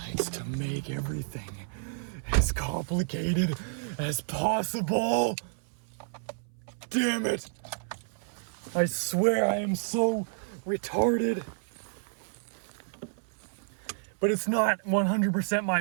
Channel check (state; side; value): silent; left; 58 dB below the other